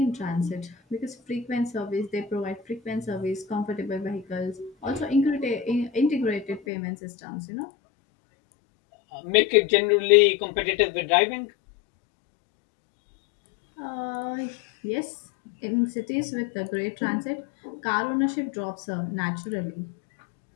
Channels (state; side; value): drops out; right; at 6.6 s